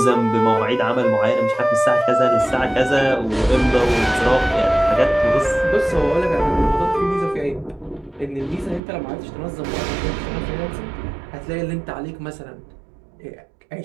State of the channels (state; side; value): drops out; left; at 8.8 s